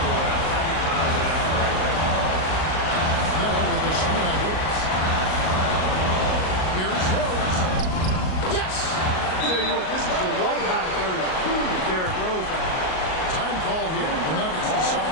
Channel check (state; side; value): late; right; 38 ms